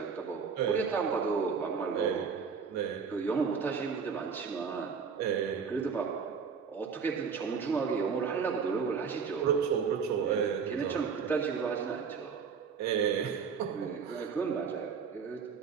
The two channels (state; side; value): quieter; left; 6.0 dB